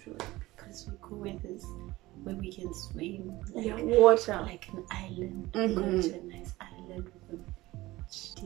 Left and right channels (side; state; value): left; quieter; 18.7 dB